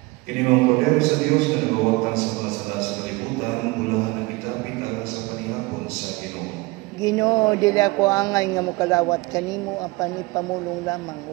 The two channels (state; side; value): quieter; left; 23.8 dB